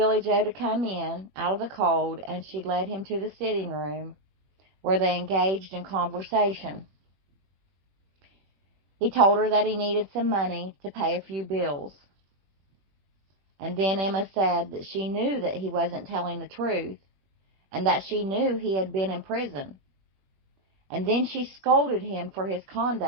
Joe to come in out of the cold, and she led him to the sitting room where they engaged in conversation. He told her that he needed some money to pay a few bills. And then Emma said that she knew that he wasn't telling the truth, and that she knew he had been in prison. And then she scolded him for his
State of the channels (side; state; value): left; late; 21 ms